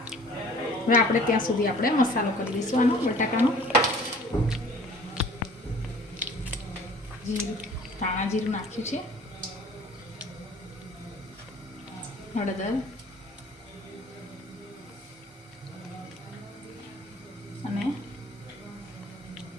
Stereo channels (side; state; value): both; normal; correlation 0.50